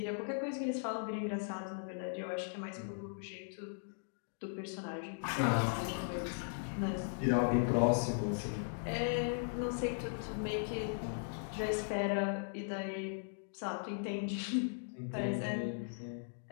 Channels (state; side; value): silent; right; digital silence